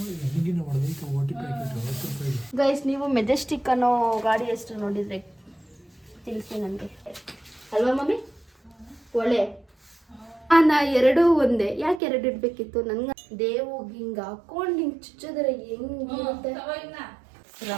ಗೈಸ್, ನೀವು ಮೆಜೆಸ್ಟಿಕ್ ಅನ್ನೋ ಗಾಡಿ ಹೆಸರು ನೋಡಿದ್ರೆ ತಿಳಿಸಿ ನನಗೆ, ಅಲ್ವಾ ಮಮ್ಮಿ? ಒಳ್ಳೆ ನಾ ಎರಡೂ ಒಂದೇ. ಯಾಕೆ ಎರಡು ಇಡ್ಬೇಕಿತ್ತು? ನನ್ಗೆ ದೇವು ಹಿಂಗ ಹಾಕೊಂಡು ಹಿಂಗ್ ಚುಚ್ಚಿದ್ರೆ ಹೆಂಗಿರುತ್ತೆ.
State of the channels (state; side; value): drops out; left; at 12.0 s